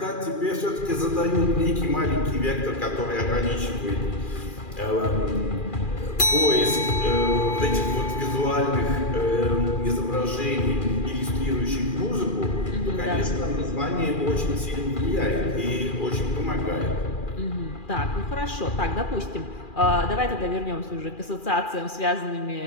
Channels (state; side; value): late; right; 2.4 ms